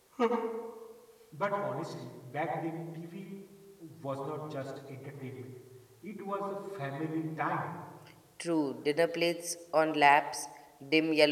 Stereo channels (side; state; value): both; identical; correlation 1.00